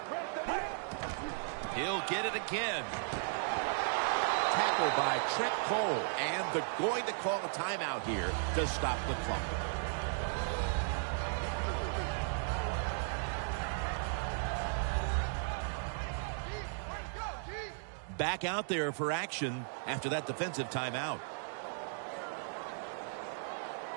He'll get it again. Tackled by Trent Cole, and they're going to call a timeout here to stop the clock. Back out there for action after that defensive timeout.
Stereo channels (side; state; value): left; silent; 54 dB below the other